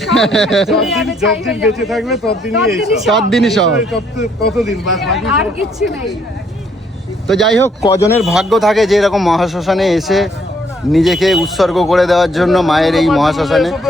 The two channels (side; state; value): both; normal; correlation 0.68